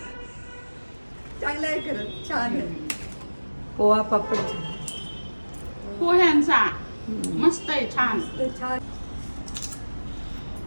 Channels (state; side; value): inverted; both; correlation -1.00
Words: चांगलं आहे, खरंच छान आहे. पोहा पापड पोह्यांचा मस्त आहे, छान, छान.